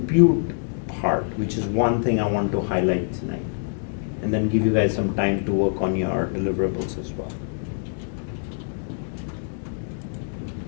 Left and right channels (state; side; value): silent; right; digital silence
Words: part, which is one thing I want to highlight tonight, and then give you guys some time to work on your deliverables as well.